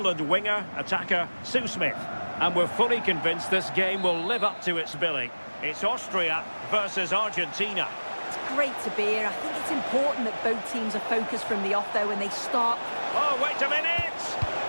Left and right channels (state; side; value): inverted; both; correlation -1.00